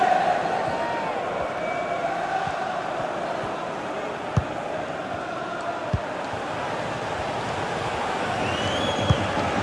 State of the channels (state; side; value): identical; both; correlation 1.00